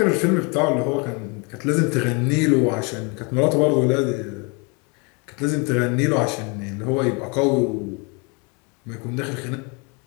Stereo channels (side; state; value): right; quieter; 32.1 dB